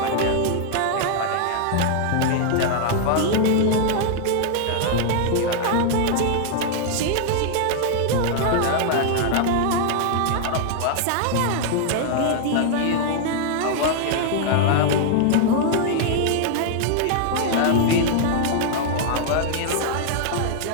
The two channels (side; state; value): both; different; correlation -0.01